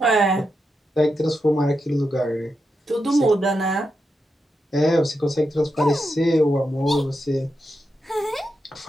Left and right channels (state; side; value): normal; both; correlation 0.86